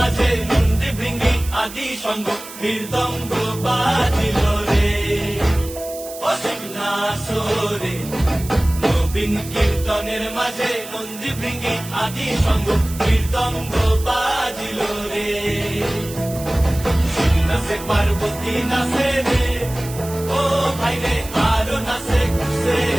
নন্দী ভৃঙ্গি আদি সঙ্গ মৃদঙ্গ বাজিল রে অসীম নাসরে। নবীন কীর্তনের মাঝে নন্দী ভৃঙ্গি আদি সঙ্গ মৃদঙ্গ বাজিল রে। নাচে পার্বতী নাচে রে ও ভাই রে আরো নাচে খুশে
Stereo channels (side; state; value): right; noise; hiss, 14 dB below the sound